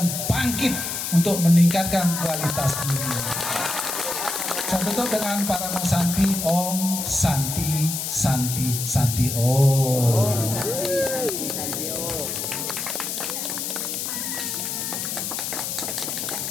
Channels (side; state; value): left; noise; hiss, 3 dB below the sound